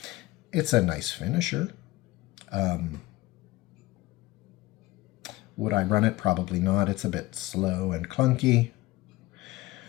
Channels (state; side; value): quieter; right; 18.7 dB